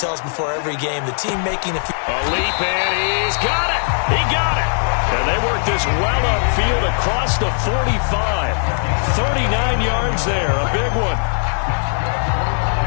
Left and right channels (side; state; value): right; silent; digital silence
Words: us before every game, the team making a leap, and he's got it. He got it. And they work this well upfield across the 45. 39 yards there, a big one.